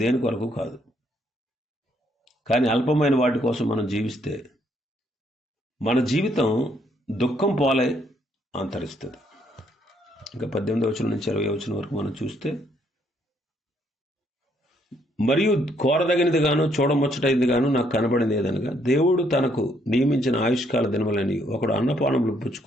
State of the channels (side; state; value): both; normal; correlation 0.70